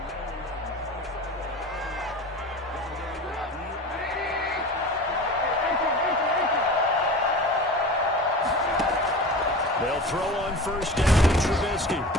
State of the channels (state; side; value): normal; both; correlation 0.34